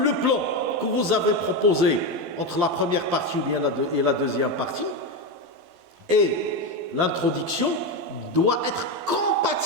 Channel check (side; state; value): left; late; 12 ms